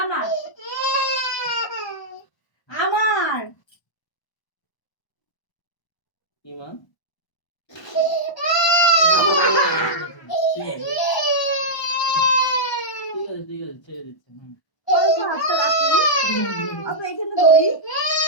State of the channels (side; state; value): right; late; 1.0 ms